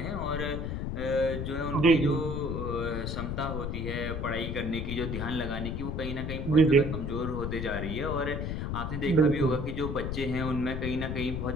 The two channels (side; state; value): left; noise; rumble, 3 dB below the sound